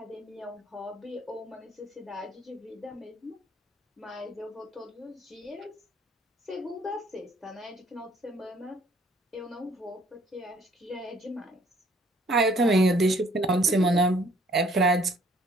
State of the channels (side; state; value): both; normal; correlation 0.60